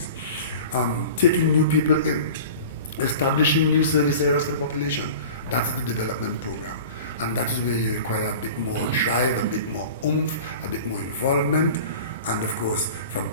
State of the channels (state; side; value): inverted; both; correlation -0.38